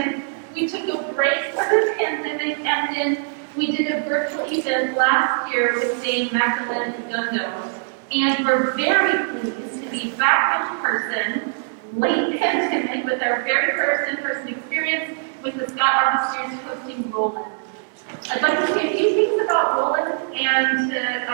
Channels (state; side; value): silent; left; digital silence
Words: We took a break for the pandemic, and then we did a virtual event last year with Dame Magdalena Kadundo. And we're very pleased to be back in person, late pandemic, with our very first in-person experience with the Scott Art Series hosting Rowland. I'd like to say a few things about Rowland and then